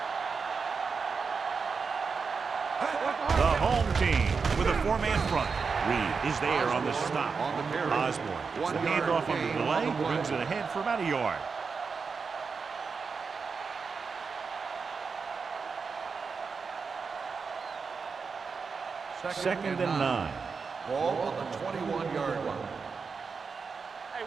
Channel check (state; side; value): quieter; left; 5.2 dB